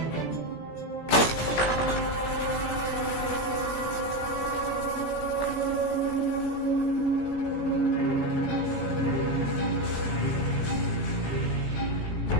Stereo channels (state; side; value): late; right; 17 ms